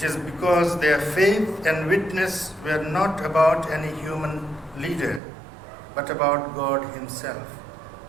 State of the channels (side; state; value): left; drops out; at 5.2 s